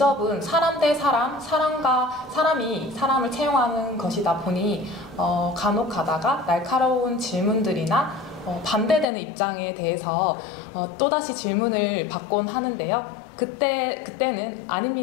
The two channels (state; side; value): drops out; right; at 9.1 s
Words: 사람 대 사람, 사람과 사람이 사람을 채용하는 것이다 보니 간혹 가다가 날카로운 질문들이나 반대되는 입장에 대해서 또다시 질문을 받곤 하는데요. 그때는